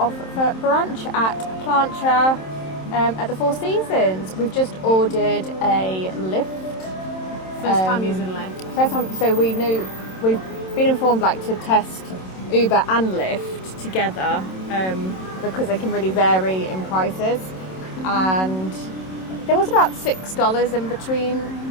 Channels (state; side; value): late; right; 27 ms